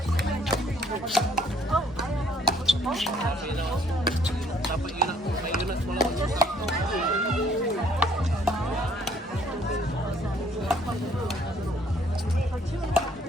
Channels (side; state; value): both; normal; correlation 0.64